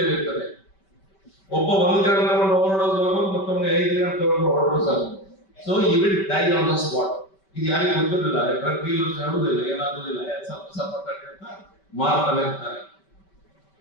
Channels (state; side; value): late; right; 5.2 ms